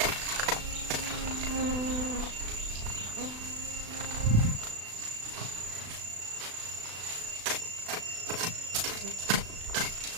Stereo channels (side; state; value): left; late; 36 ms